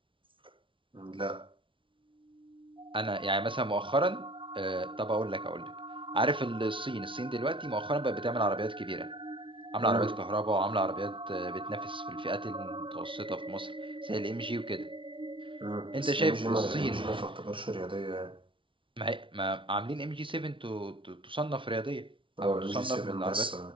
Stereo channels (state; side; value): late; left; 0.25 ms